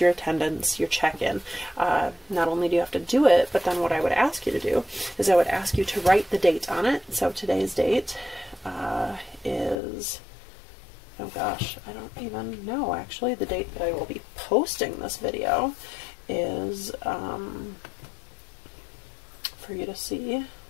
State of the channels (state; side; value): drops out; right; at 9.8 s